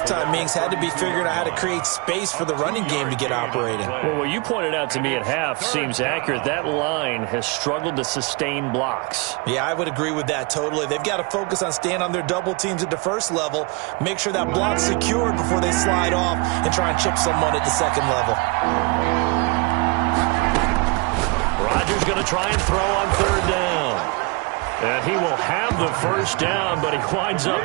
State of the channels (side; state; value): left; quieter; 28.8 dB